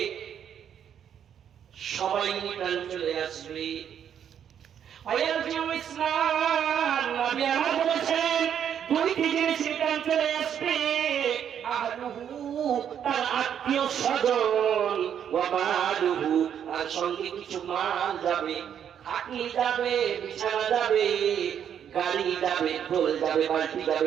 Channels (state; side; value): quieter; left; 8.9 dB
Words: সবাই রিটার্ন চলে আসবে। ইসলাম নবী আমার বলেছেন দুইটি জিনিস রিটার্ন চলে আসবে, আহলুহু তার আত্মীয় স্বজন, ওয়া মালুহু আর সঙ্গে কিছু মাল যাবে, খাটনি যাবে, বিছানা যাবে, গাড়ি যাবে, ঢোল যাবে, বালতি